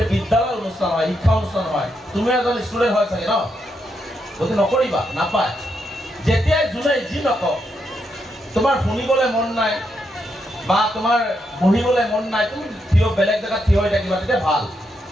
বিদ্যালয়ৰ অনুষ্ঠান হয় শিক্ষা অনুষ্ঠান হয় তুমি এজন ষ্টুডেন্ট হয় চাগে ন যদি নকৰিবা নাপায় যেতিয়াই জুনে যি নকওঁ তোমাৰ শুনিবলৈ মন নাই বা তোমাৰ বহিবলৈ মন নাই তুমি থিয় বেলেগ জায়গা থিয় হৈ থাকিবা তেতিয়া ভাল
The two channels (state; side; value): normal; both; correlation 0.81